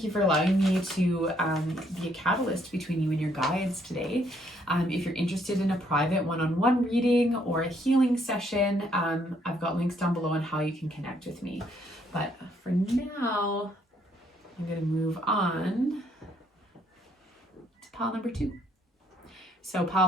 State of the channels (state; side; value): normal; both; correlation 0.69